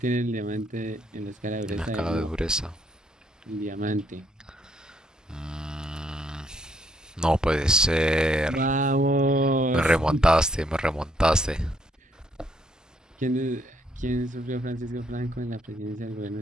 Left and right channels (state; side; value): normal; both; correlation 0.71